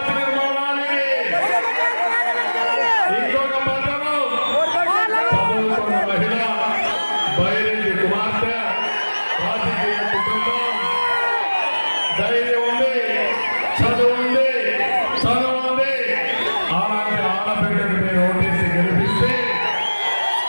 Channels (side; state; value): both; inverted; correlation -1.00